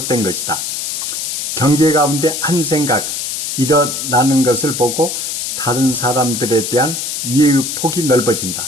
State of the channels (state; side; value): noise; left; hiss, 3 dB below the sound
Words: 것이다. 경계 가운데 한 생각 일어나는 것을 보고 다른 사람들에 대한 이해의 폭이